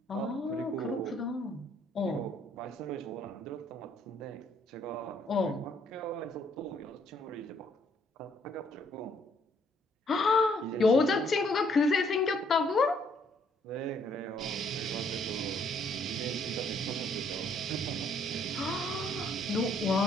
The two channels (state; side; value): normal; both; correlation 0.66